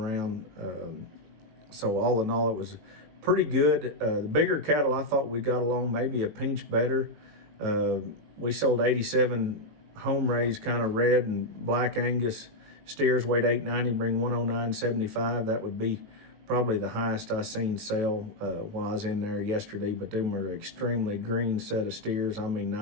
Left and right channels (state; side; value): late; left; 19 ms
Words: So all in all, it was pretty good. The bigger cattle, I thought we got along maybe a pinch better. We sold 87 home raised kind of red and black Angus steers, weighed 890, bring 109.75. That would be probably the highest I seen sell while I was in there yesterday, but them were extremely green set of steers.